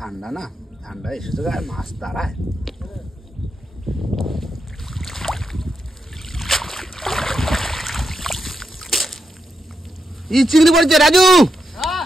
না, ঠান্ডা এসেছে আর মাছ দাঁড়ায়। এই চিংড়ি পড়ছে রাজু,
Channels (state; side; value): normal; both; correlation 0.85